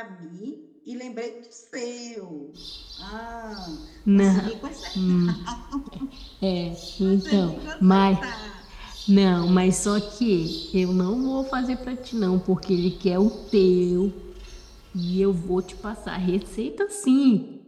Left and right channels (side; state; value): both; identical; correlation 1.00